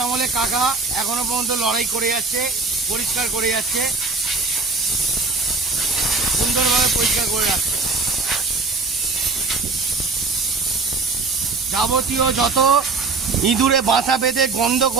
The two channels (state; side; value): quieter; left; 4.0 dB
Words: আমলে কাকা এখনো পর্যন্ত লড়াই করে যাচ্ছে, পরিষ্কার করে যাচ্ছে, সুন্দরভাবে পরিষ্কার করে রাখছে। যাবতীয় যত ইঁদুরে বাসা বেঁধে গন্ধ